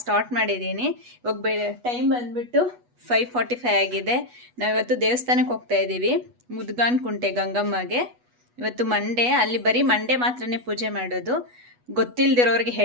ಸ್ಟಾರ್ಟ್ ಮಾಡಿದ್ದೀನಿ. ಇವಾಗ ಟೈಮ್ ಬಂದುಬಿಟ್ಟು 5:45 ಆಗಿದೆ. ನಾವಿವತ್ತು ದೇವಸ್ಥಾನಕ್ಕೆ ಹೋಗ್ತಾ ಇದ್ದೀವಿ, ಮುದ್ಗಾನ್ ಕುಂಟೆ ಗಂಗಮ್ಮಗೆ. ಇವತ್ತು ಮಂಡೇ, ಅಲ್ಲಿ ಬರೀ ಮಂಡೇ ಮಾತ್ರನೇ ಪೂಜೆ ಮಾಡೋದು. ಗೊತ್ತಿಲ್ಲದಿರೋರಿಗೆ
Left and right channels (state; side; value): late; left; 8.2 ms